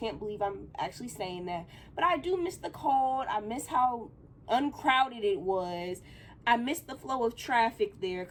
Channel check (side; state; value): both; identical; correlation 1.00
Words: believe I'm actually saying that. But I do miss the cold. I miss how uncrowded it was. I miss the flow of traffic there,